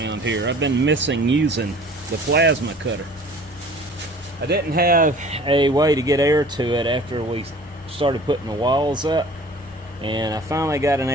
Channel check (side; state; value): both; normal; correlation 0.47